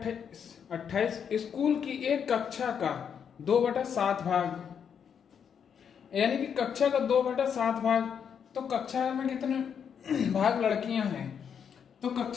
28। स्कूल की एक कक्षा का 2/7 भाग, यानी कि कक्षा का 2/7 भाग, तो कक्षा में कितने भाग लड़कियां हैं, तो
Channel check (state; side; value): quieter; right; 7.5 dB